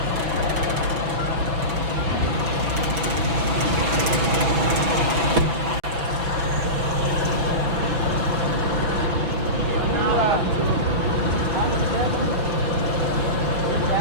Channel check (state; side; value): late; left; 6.0 ms